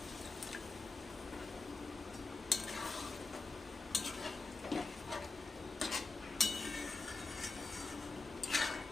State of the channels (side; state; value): right; quieter; 3.7 dB